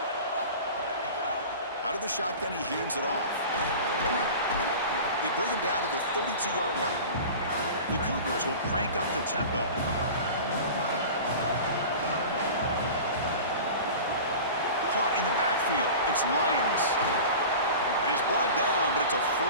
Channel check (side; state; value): both; inverted; correlation -0.36